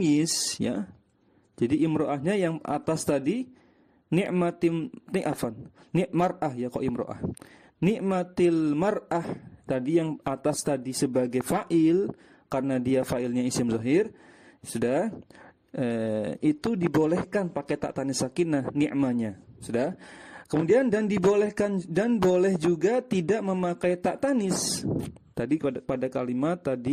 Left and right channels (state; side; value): identical; both; correlation 1.00